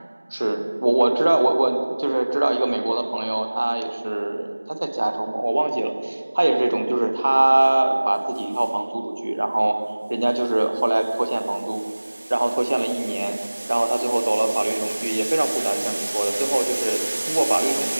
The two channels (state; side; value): inverted; both; correlation -1.00